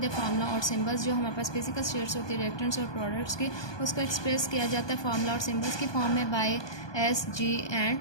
formula और सिंबल्स। जो हमारे पास फिजिकल स्टेट्स होती है रिएक्टेंट्स और प्रोडक्ट्स की, उसको एक्सप्रेस किया जाता है फार्मूला और सिंबल्स की फॉर्म में by S, G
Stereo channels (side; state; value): right; late; 1.2 ms